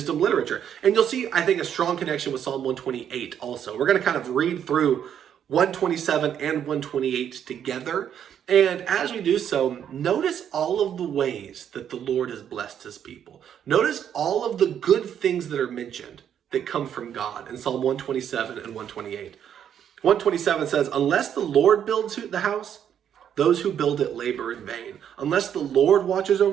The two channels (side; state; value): left; quieter; 9.2 dB